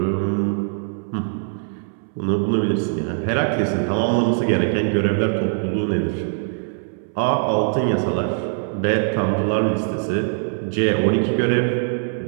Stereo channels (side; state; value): left; silent; 64 dB below the other